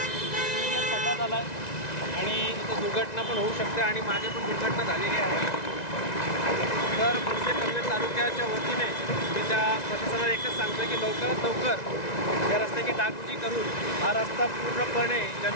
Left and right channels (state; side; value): late; right; 1.9 ms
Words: खड्डा झाला आहे आणि इथं दुर्घटना पण होऊ शकते आणि मागे पण दुर्घटना झालेली आहे. तर मनसे पनवेल तालुक्याच्या वतीने मी त्या प्रशासनाला एकच सांगतो की लवकरात लवकर या रस्त्याची डागडुजी करून हा रस्ता पूर्णपणे